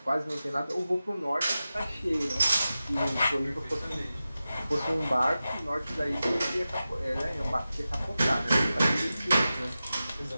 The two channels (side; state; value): both; inverted; correlation -0.94